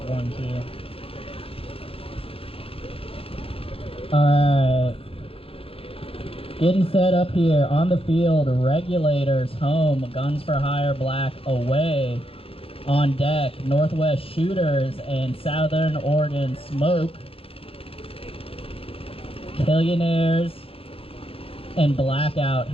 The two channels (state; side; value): late; right; 0.27 ms